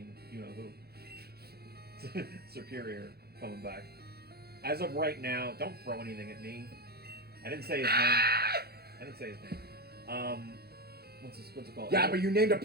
you know who. Superior coming back. As of right now, don't throw anything at me. I didn't say his name. What's it called? Yeah, but you named a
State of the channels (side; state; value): left; late; 0.46 ms